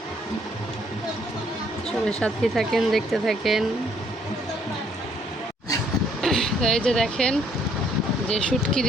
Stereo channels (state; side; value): normal; both; correlation 0.66